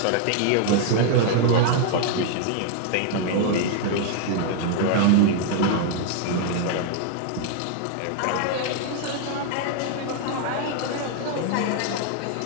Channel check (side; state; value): both; different; correlation 0.00